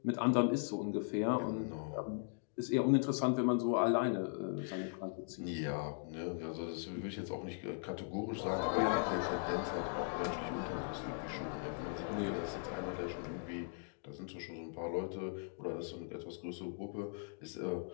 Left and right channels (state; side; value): silent; right; digital silence